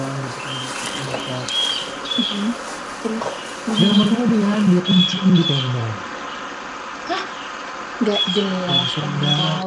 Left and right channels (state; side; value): identical; both; correlation 1.00